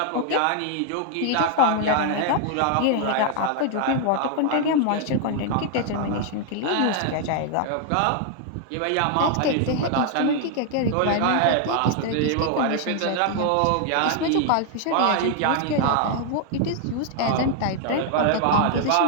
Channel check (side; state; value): both; different; correlation 0.00